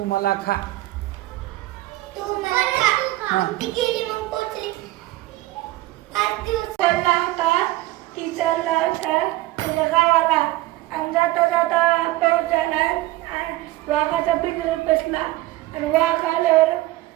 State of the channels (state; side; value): quieter; left; 17.7 dB